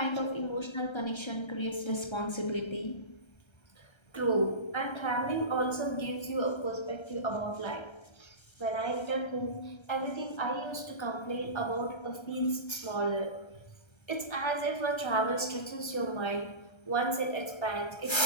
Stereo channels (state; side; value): late; right; 1.3 ms